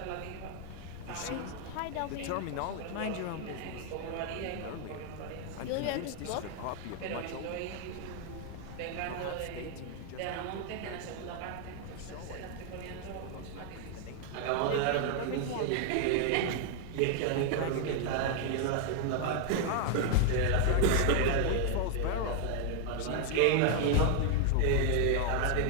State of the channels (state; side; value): different; both; correlation 0.00